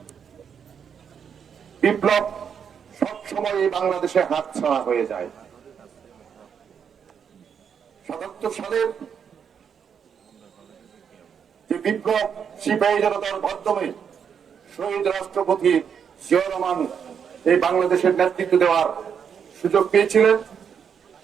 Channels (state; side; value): quieter; left; 7.4 dB